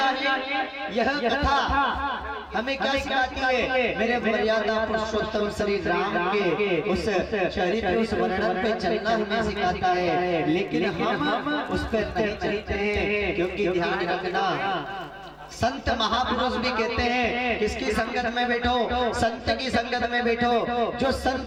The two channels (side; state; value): both; identical; correlation 1.00